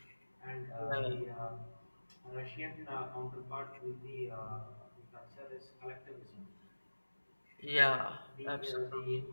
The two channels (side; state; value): both; inverted; correlation -1.00